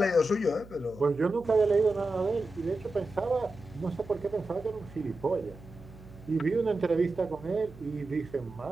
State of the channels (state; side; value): noise; right; hum, 19 dB below the sound